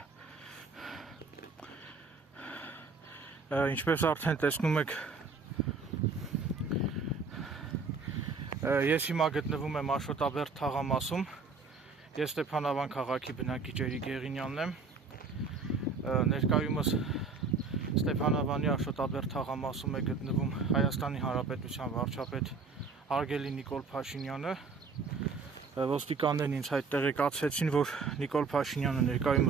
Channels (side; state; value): left; quieter; 4.6 dB